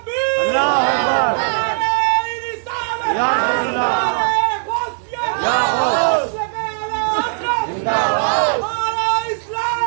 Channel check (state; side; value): silent; left; digital silence